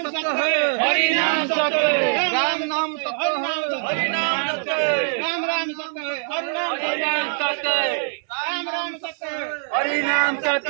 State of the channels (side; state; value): left; silent; 64 dB below the other